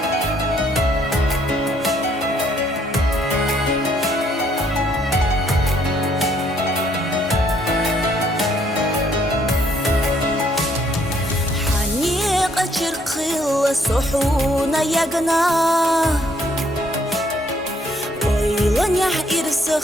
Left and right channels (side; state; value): both; normal; correlation 0.67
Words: شرقل صحونا يقنا ويلن